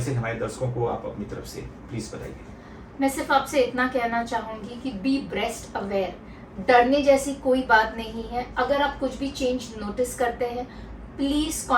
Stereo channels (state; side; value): identical; both; correlation 1.00